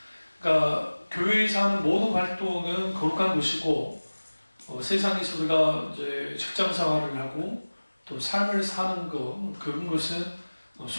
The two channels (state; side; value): inverted; both; correlation -1.00